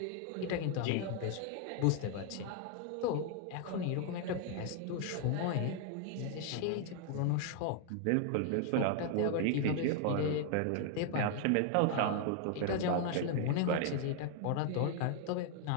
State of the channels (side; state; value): both; different; correlation 0.00